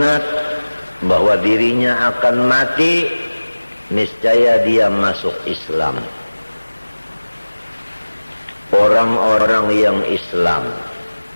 bahwa dirinya akan mati, niscaya dia masuk Islam. Orang-orang yang Islam,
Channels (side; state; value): both; inverted; correlation -1.00